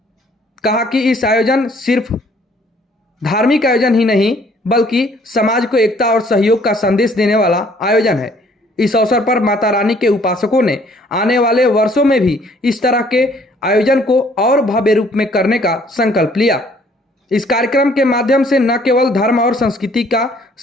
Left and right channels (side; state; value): both; normal; correlation 0.60